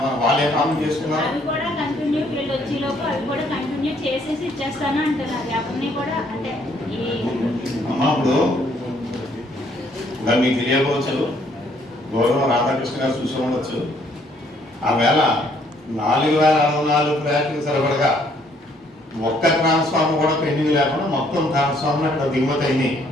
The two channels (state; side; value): normal; both; correlation 0.66